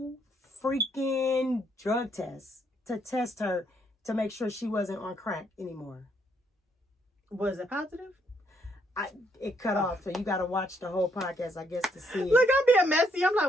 freaking drug test to test her to make sure she wasn't on crack anymore. Was it positive? It cut off, so you got to watch the whole podcast, I guess, to see it. Look, I'm being messy. I'm like,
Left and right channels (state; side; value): normal; both; correlation 0.72